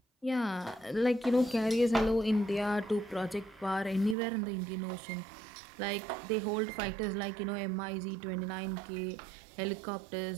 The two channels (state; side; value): drops out; left; at 4.2 s